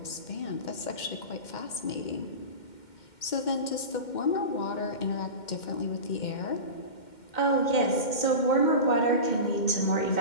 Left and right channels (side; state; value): right; late; 2.1 ms